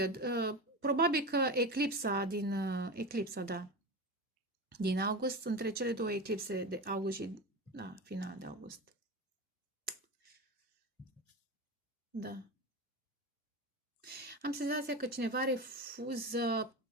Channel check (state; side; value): normal; both; correlation 0.24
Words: Probabil că eclipsa din august, între cele două eclipse de august și final de august. Da. Am senzația că cineva refuză